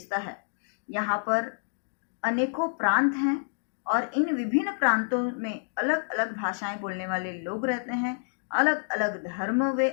है। यहाँ पर अनेकों प्रांत हैं और इन विभिन्न प्रांतों में अलग अलग भाषाएं बोलने वाले लोग रहते हैं, अलग अलग धर्म वे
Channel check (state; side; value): silent; right; digital silence